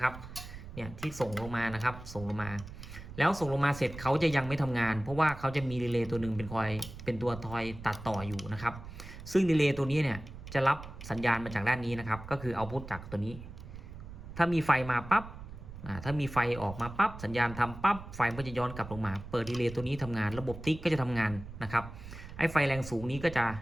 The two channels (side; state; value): right; noise; rumble, 13 dB below the sound